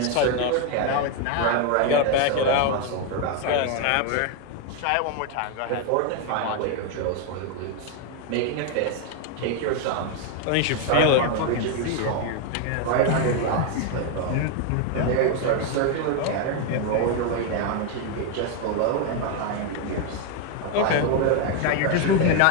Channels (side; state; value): both; different; correlation 0.01